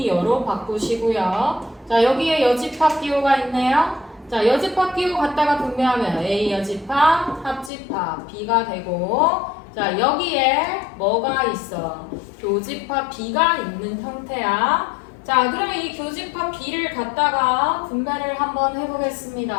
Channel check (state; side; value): drops out; right; at 7.7 s